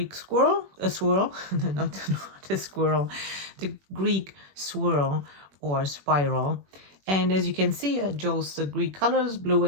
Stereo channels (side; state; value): left; late; 21 ms